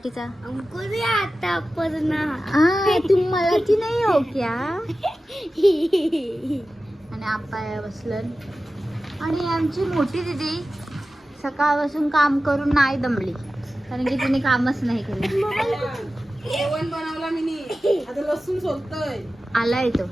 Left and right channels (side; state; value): both; normal; correlation 0.94